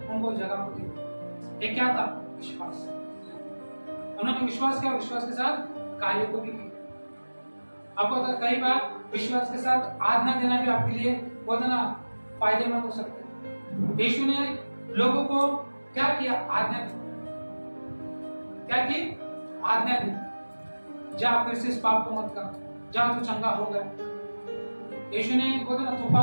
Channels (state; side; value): inverted; both; correlation -1.00